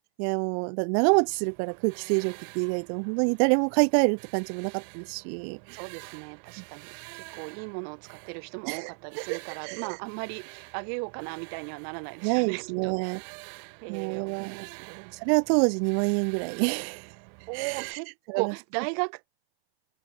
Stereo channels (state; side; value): silent; left; 59 dB below the other